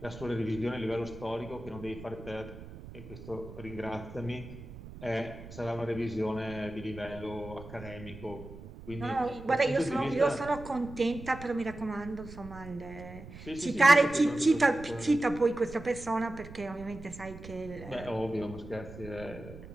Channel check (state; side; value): noise; right; rumble, 14 dB below the sound